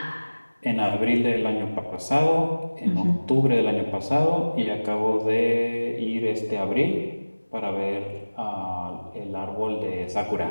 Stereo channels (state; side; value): inverted; both; correlation -1.00